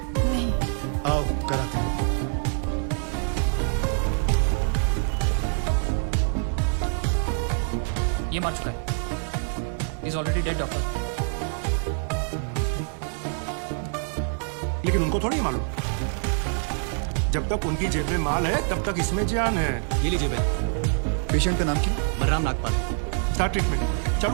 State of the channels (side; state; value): left; silent; 58 dB below the other